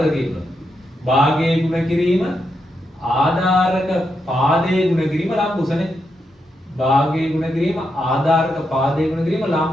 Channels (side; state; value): both; normal; correlation 0.83